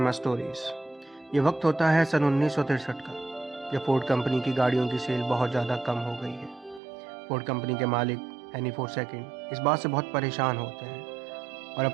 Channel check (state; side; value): drops out; left; at 6.8 s